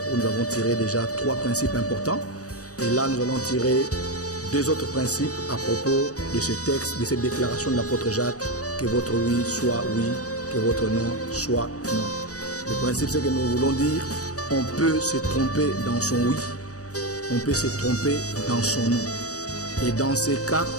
où nous avons tiré déjà 3 principes importants. Et là, nous allons tirer 2 autres principes à propos de ce texte, de cette déclaration de l'apôtre Jacques, que votre oui soit oui, que votre non soit non. Le principe, c'est que nous voulons dire, on peut se tromper dans son oui, on peut se tromper dans son non. Et dans ces cas,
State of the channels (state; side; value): late; right; 0.66 ms